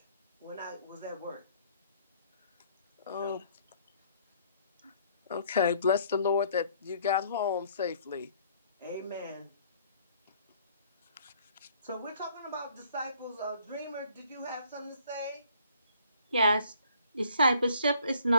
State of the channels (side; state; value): both; inverted; correlation -0.60